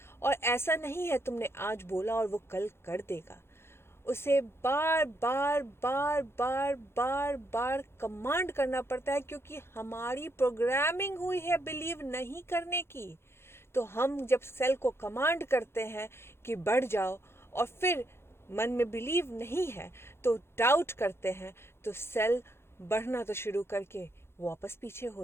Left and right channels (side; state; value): right; late; 0.12 ms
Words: और ऐसा नहीं है तुमने आज बोला और वो कल कर देगा। उसे बार बार बार बार बार बार कमांड करना पड़ता है, क्योंकि हमारी प्रोग्रामिंग हुई है बिलीव नहीं करने की। तो हम जब सेल को कमांड करते हैं कि बढ़ जाओ, और फिर मन में बिलीव नहीं है तो डाउट करते हैं, तो सेल बढ़ना तो शुरू करके वापस पीछे